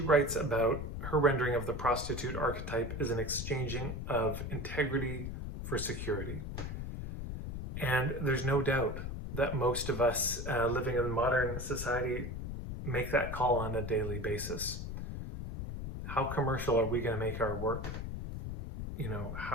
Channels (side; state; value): left; noise; rumble, 6 dB below the sound